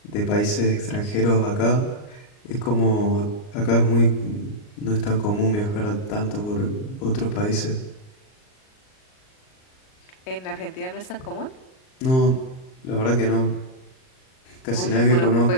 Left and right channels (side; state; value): right; late; 38 ms